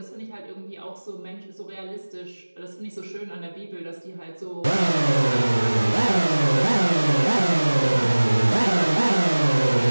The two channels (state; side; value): inverted; both; correlation -1.00